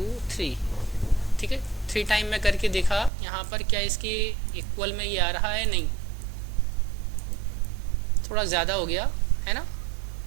3, ठीक है, 3 टाइम मैं करके देखा यहाँ पर क्या इसकी इक्वल में ये आ रहा है, नहीं, थोड़ा ज़्यादा हो गया है ना।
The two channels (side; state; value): left; drops out; at 3.1 s